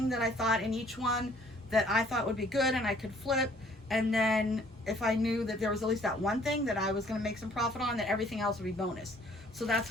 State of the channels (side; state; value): both; normal; correlation 0.59